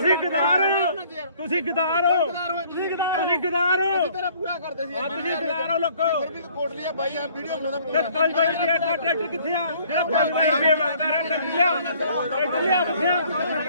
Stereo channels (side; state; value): both; inverted; correlation -0.58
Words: ਗਦਾਰ ਹੋ, ਤੁਸੀਂ ਗਦਾਰ ਹੋ, ਤੁਸੀਂ ਗਦਾਰ ਹੋ, ਤੇਰਾ ਪੂਰਾ ਕਰਦੇ ਸੀ ਤੁਸੀਂ ਗਦਾਰ ਹੋ ਲੋਕੋ। ਫਿਰ ਵੀ ਕੋਟਲੀ ਆ ਬਾਈ ਆ ਵੀਡੀਓ ਬਣਾਉਂਦਾ ਤੇ 5 ਵਜੇ ਦਾ ਟਰੈਕਟਰ ਕਿੱਥੇ ਆ? ਜਿਹੜਾ 5 ਵਜੇ ਮੰਗਦਾ ਰਿਹਾ ਟਰੈਕਟਰ ਲਿਆ, ਟਰੈਕਟਰ ਲਿਆ ਕਿੱਥੇ